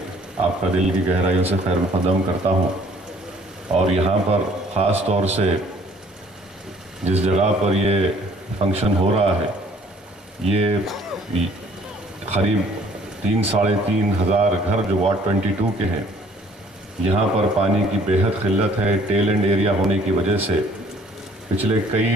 आपका दिल की गहराइयों से खैर मुक़द्दम करता हूँ। और यहाँ पर ख़ास तौर से जिस जगह पर ये फंक्शन हो रहा है, ये करीब 3-3.5 हज़ार घर जो वार्ड 22 के हैं, यहाँ पर पानी की बेहद किल्लत है। टेल एंड एरिया होने की वजह से पिछले कई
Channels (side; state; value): both; normal; correlation 0.58